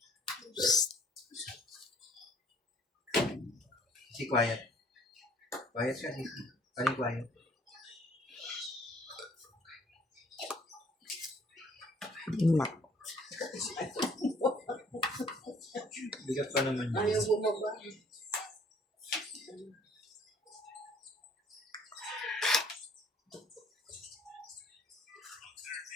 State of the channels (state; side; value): normal; both; correlation 0.58